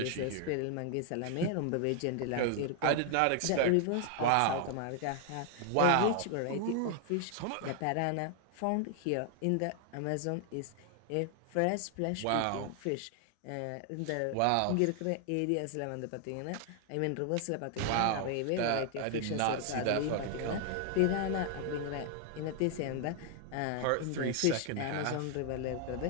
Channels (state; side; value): different; both; correlation 0.00